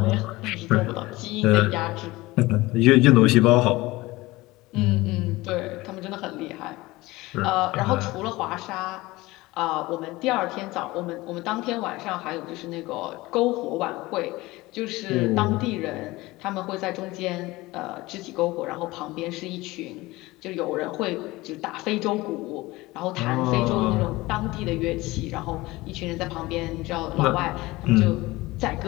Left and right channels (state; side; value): quieter; right; 20.2 dB